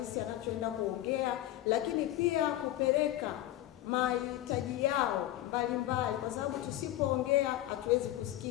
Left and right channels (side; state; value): right; quieter; 14.3 dB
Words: anachoenda kuongea, lakini pia kupeleka mahitaji yao mbalimbali, kwa sababu tusipoongea hatuwezi